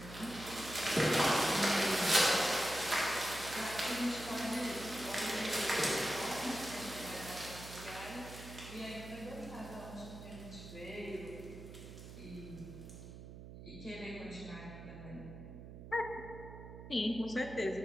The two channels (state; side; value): noise; right; hum, 13 dB below the sound